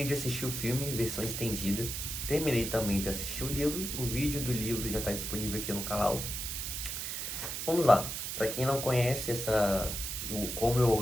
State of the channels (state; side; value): noise; right; hiss, 4 dB below the sound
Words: de assistir o filme, versão estendida. Terminei também de assistir o livro, o vídeo do livro já está disponível aqui no canal. Vamos lá, para quem não conhece como eu